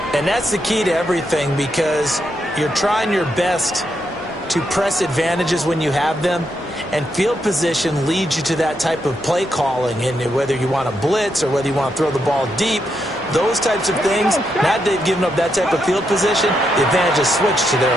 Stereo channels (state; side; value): normal; both; correlation 0.81